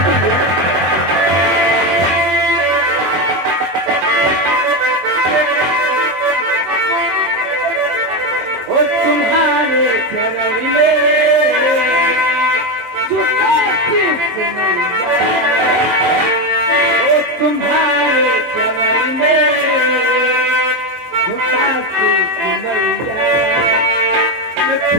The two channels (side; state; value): left; late; 24 ms